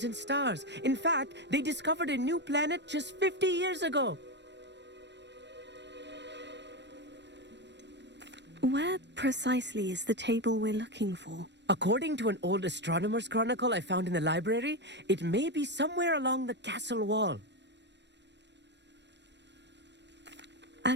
and stars. In fact, they discovered a new planet just 50 years ago. Where precisely is the table we're looking for? According to an old astronomer's chronicle I found in the library, it may be somewhere along the castle wall.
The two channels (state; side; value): late; left; 0.51 ms